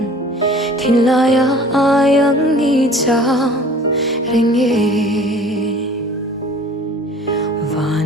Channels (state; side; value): normal; both; correlation 0.47